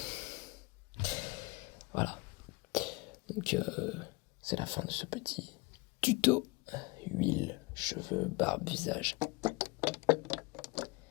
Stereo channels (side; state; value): right; quieter; 24.8 dB